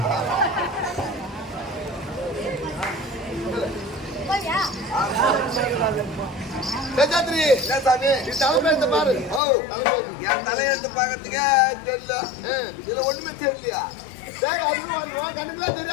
தலைமையெடுத்து பாரு. என் தலையெடுத்து பாக்கிறதுக்கே தெரியல. இதுல ஒண்ணுமே தெரியலையா? கண்ணுக்குலாம்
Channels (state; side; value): drops out; right; at 9.4 s